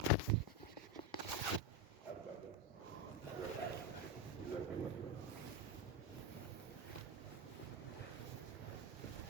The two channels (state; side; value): normal; both; correlation 0.12